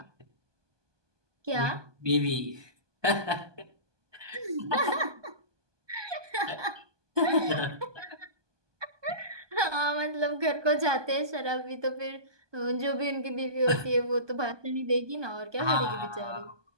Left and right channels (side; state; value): left; late; 1.2 ms